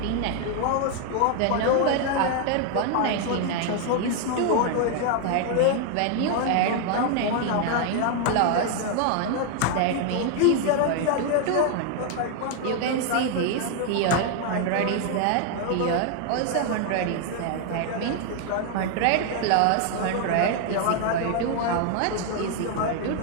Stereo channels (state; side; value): different; both; correlation 0.00